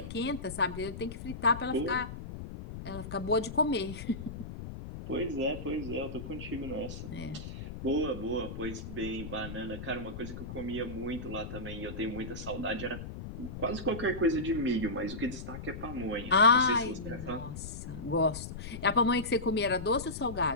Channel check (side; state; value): left; noise; rumble, 9 dB below the sound